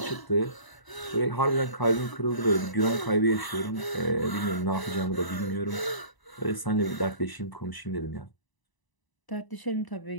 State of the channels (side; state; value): right; late; 1.0 ms